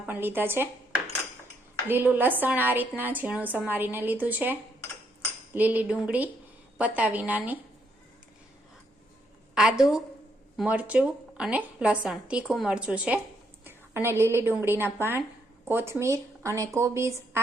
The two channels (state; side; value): normal; both; correlation 0.75